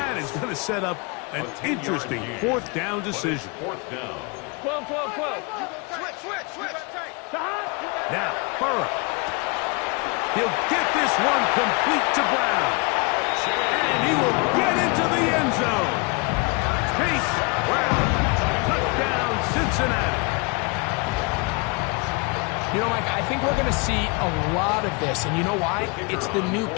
is going to set up an interesting 4th down decision. 4th down. 12, 12, 12. Switch. Stop. Now, Burrow. He'll get this one complete to Brown. And he will get into the end zone. Chase Brown. Touchdown, Cincinnati. You know, Mike, I think we're going to see a lot of this, and you know why? It's the new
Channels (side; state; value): right; quieter; 30.2 dB